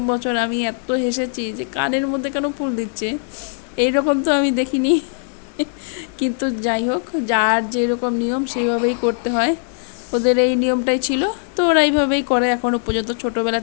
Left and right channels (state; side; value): silent; right; 66 dB below the other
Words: বছর আমি এত হেসেছি যে কানের মধ্যে কেন ফুল দিচ্ছে, এইরকম তো আমি দেখিনি। কিন্তু যাই হোক, যার যেরকম নিয়ম সেইভাবেই করতে হয়, ওদের এই নিয়মটাই ছিল, তো ওরা এইভাবেই করে এখনও পর্যন্ত,